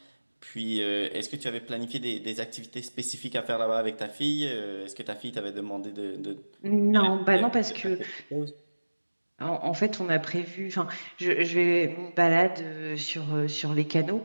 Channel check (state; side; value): inverted; both; correlation -1.00